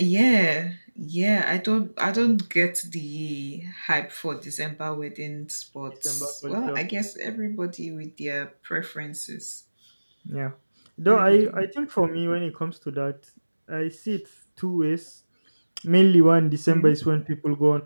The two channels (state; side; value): inverted; both; correlation -1.00